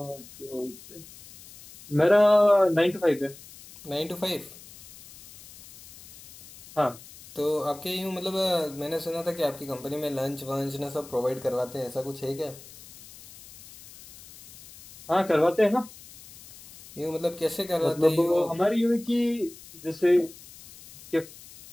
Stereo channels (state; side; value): noise; left; hiss, 19 dB below the sound